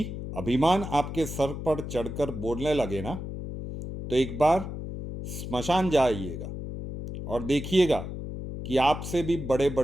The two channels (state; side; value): noise; left; hum, 7 dB below the sound